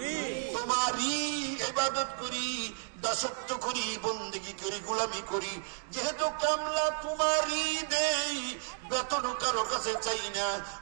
তোমারই ইবাদত করি দাসত্ব করি বন্দেগী করি গোলামি করি যেহেতু কামলা তোমারই দেই বেতন কারো কাছে চাই না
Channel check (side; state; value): left; silent; digital silence